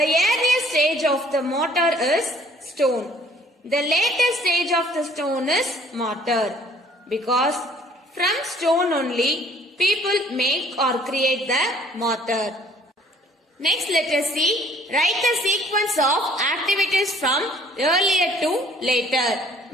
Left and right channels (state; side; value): normal; both; correlation 0.57